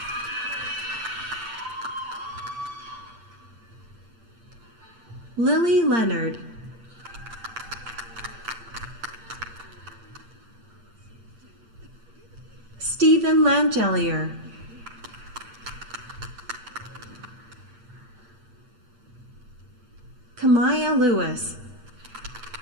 Lily Leonard. Stephen Langelier. Kamaya Lewis.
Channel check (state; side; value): late; left; 8.7 ms